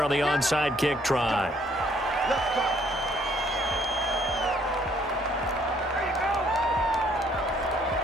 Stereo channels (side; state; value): both; normal; correlation 0.65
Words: on the onside kick try.